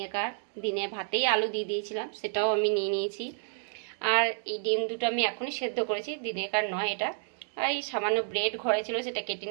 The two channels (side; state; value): left; silent; digital silence